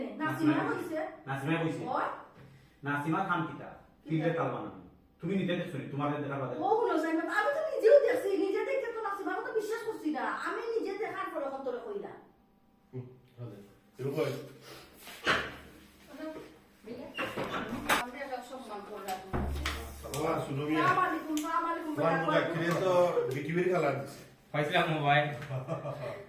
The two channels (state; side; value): identical; both; correlation 1.00